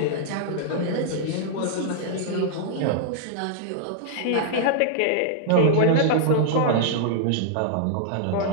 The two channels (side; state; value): both; different; correlation -0.01